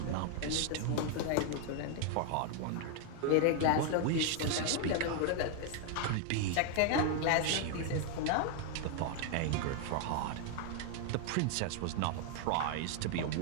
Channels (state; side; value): different; both; correlation 0.00